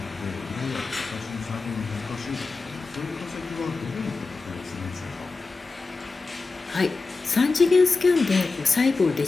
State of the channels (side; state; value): right; quieter; 4.0 dB